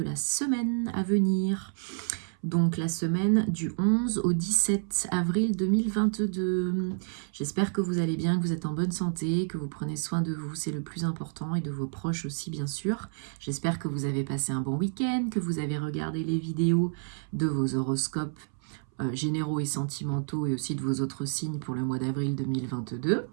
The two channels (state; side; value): silent; left; 58 dB below the other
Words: semaine à venir. Donc la semaine du 11 au 17 avril 2022. J'espère que vous allez bien, que vous êtes en bonne santé, que vous prenez soin de vous, c'est le plus important, et de vos proches aussi bien sûr. J'espère que vous avez passé un bon week-end, que vous avez regardé les vidéos de vos horoscopes généraux et sentimentaux et aussi de vos autres signes pour le mois d'avril 2022.